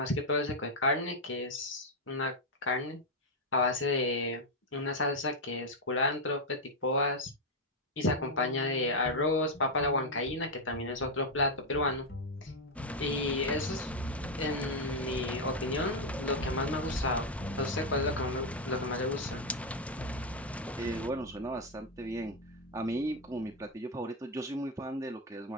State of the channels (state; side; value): normal; both; correlation 0.03